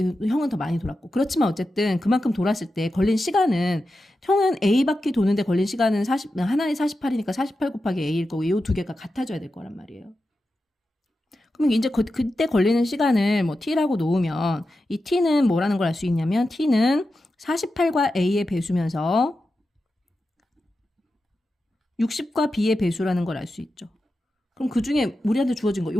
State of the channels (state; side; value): normal; both; correlation 0.91